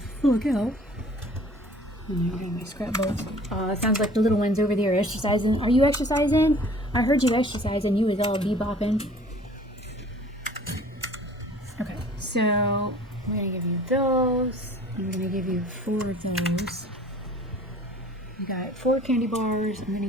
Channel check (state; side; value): normal; both; correlation 0.50